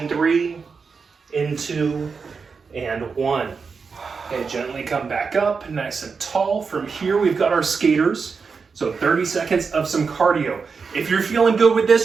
3, in 2, and 1. Okay, gently come back up, nice and tall. From here, we've got our skaters. So 30 seconds of some cardio. If you're feeling good with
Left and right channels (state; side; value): quieter; left; 5.2 dB